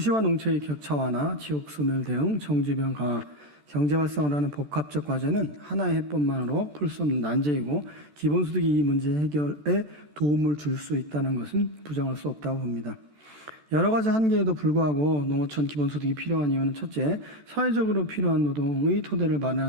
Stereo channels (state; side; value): late; left; 14 ms